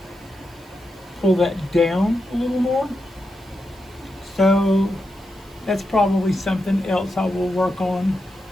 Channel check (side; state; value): right; noise; hiss, 28 dB below the sound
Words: down a little more. So that's probably something else I will work on